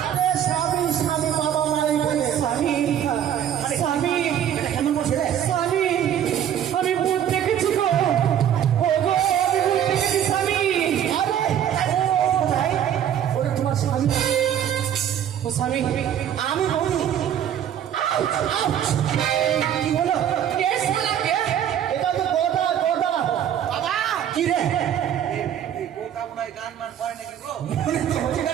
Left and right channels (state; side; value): quieter; left; 9.9 dB